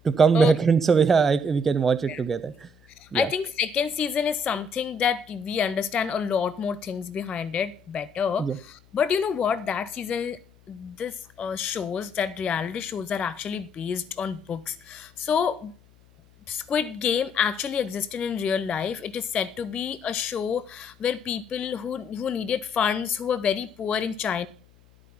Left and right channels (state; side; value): noise; left; hum, 29 dB below the sound